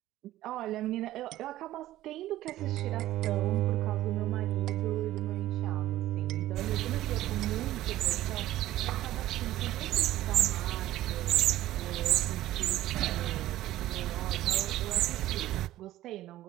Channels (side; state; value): left; quieter; 14.8 dB